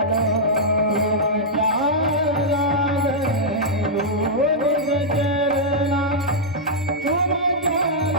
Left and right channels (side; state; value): both; normal; correlation -0.08